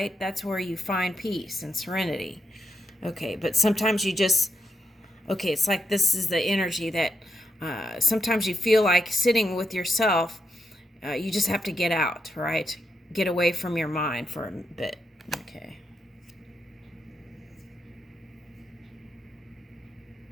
That's where you find peace and serenity. Okay, but sometimes you just... Okay, it's like this is the energy that sometimes you feel like sitting with yourself. You just have to get out, right? Get away from your mind for a bit. Okay.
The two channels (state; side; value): normal; both; correlation 0.83